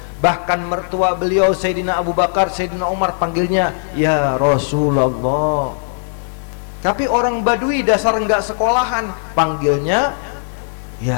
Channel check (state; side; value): silent; right; digital silence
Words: Bahkan mertua beliau Sayyidina Abu Bakar, Sayyidina Umar panggilnya ya Rasulullah. Tapi orang Badui dasar enggak sekolahan, panggilnya